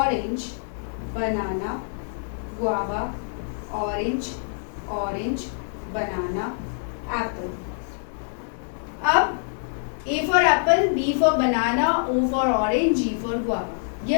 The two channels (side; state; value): right; silent; 62 dB below the other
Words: banana, guava, orange, banana, apple. अब A for apple, B for banana, O for orange, G for guava.